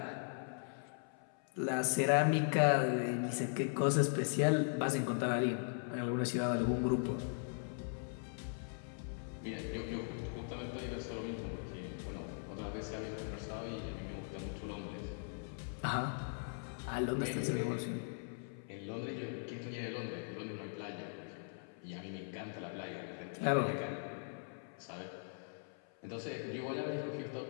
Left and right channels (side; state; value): right; silent; 51 dB below the other